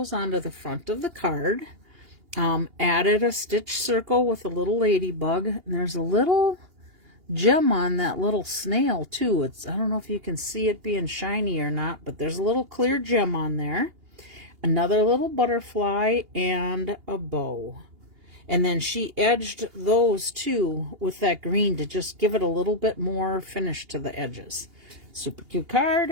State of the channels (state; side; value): late; left; 2.8 ms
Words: onto the front of the card. Added a stitch circle with a little ladybug. And there's a little gem on that little snail too. I don't know if you can see it being shiny or not, but there's a little clear gem on there. Another little butterfly and a bow. And then she edged those too with that green to just give it a little bit more finish to the edges. Super cute